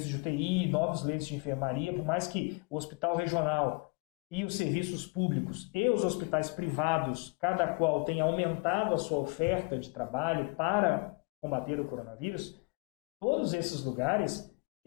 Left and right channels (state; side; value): quieter; right; 31.7 dB